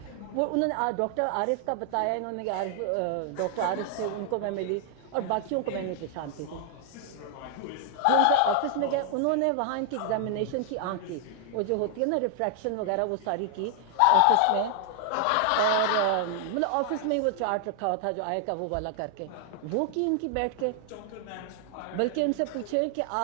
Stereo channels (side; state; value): both; different; correlation 0.00